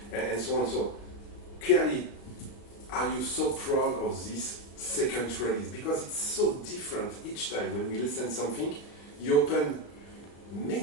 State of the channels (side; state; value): right; late; 35 ms